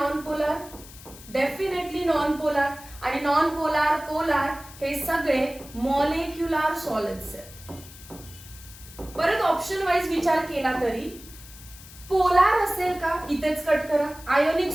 polar? Definitely non polar. आणि नॉन पोलार पोलार हे सगळे मॉलिक्युलर सॉलिड्स आहेत. परत ऑप्शन वाईज विचार केला तरी पोलार असेल का? इथेच कट करा. आयोनिक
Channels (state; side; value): noise; left; hiss, 18 dB below the sound